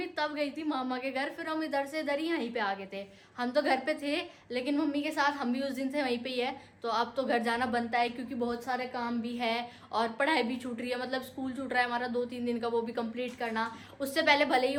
तब गई थी मामा के घर। फिर हम इधर से इधर ही यहीं पे आ गए थे। हम तो घर पे थे लेकिन मम्मी के साथ हम भी उस दिन से वहीं पे ही है। तो अब तो घर जाना बनता है क्योंकि बहुत सारे काम भी है और पढ़ाई भी छूट रही है। मतलब स्कूल छूट रहा है हमारा 2-3 दिन का, वो भी कंप्लीट करना। उससे पहले भले ही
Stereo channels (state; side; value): identical; both; correlation 1.00